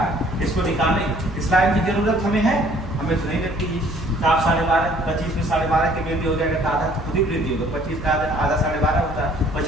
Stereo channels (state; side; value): noise; left; hum, 11 dB below the sound